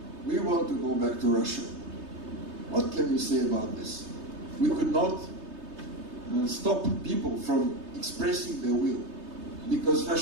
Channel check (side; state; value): left; late; 3.3 ms